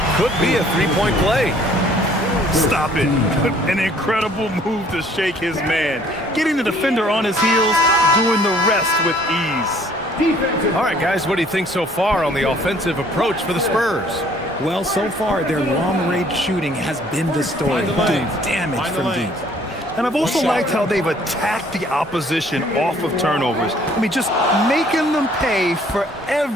could be a three-point play. Stop it. An incredible move to shake his man. Getting the defender on his heels, doing the rest with ease. All right, guys, what do you think so far on the offensive approach for the Spurs? Well, so far, their long-range shooting has been the story, doing damage from deep. And I've also liked how they've attacked the opposition off of turnovers. I mean, just making them pay for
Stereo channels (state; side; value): normal; both; correlation 0.58